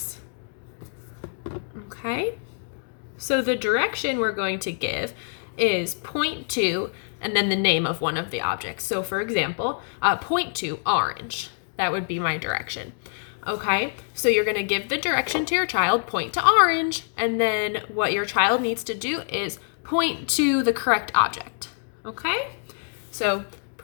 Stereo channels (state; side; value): silent; right; digital silence